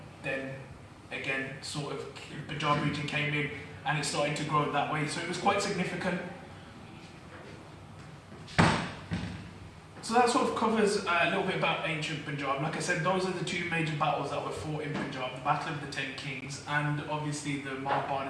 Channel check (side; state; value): both; identical; correlation 1.00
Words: then again, sort of Punjab region came in and it started to grow that way. So it was quite significant. So that sort of covers a little bit about ancient Punjab. Like I said, those are the two major battles that were fought in Punjab, the Battle of the Ten Kings and obviously the